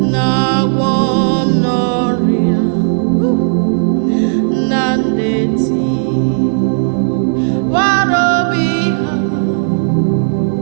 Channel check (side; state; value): left; silent; digital silence